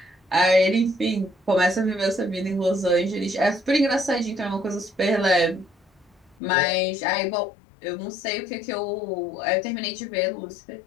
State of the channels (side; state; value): right; drops out; at 6.4 s